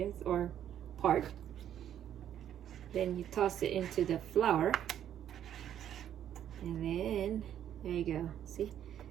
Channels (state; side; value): quieter; left; 10.3 dB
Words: or part. Then you toss it into the flour, and then there you go. See?